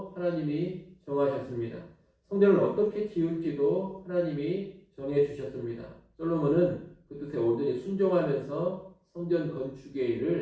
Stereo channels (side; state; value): both; identical; correlation 1.00